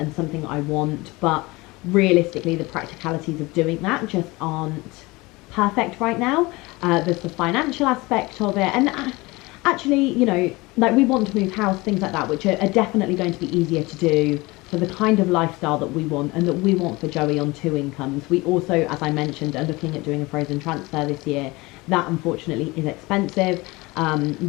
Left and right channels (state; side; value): quieter; right; 22.7 dB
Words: something I want, but realistically the practicalities of doing that just aren't perfect right now. There's the financial aspect of it, and actually, you know, like we want to move house, things like that, which are definitely going to be easier to do for the kind of lifestyle that we want and that we want for Joey on 2 incomes. We also, as I mentioned, are looking at doing a frozen transfer this year. That unfortunately is expensive.